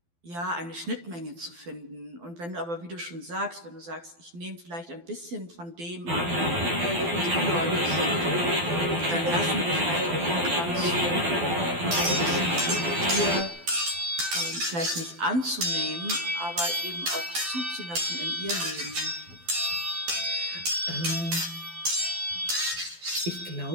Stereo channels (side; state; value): left; late; 12 ms